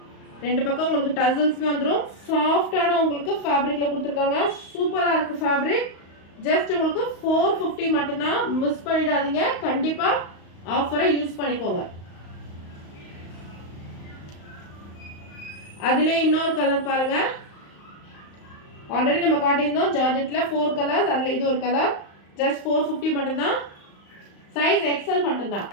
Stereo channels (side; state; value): right; late; 35 ms